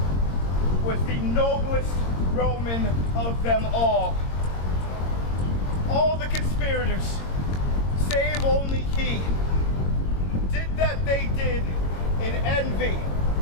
was the noblest Roman of them all. All the conspirators, save only he, did that they did in envy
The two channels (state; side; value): late; right; 22 ms